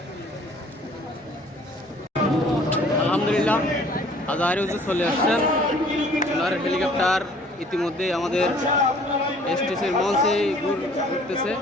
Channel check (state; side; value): normal; both; correlation 0.55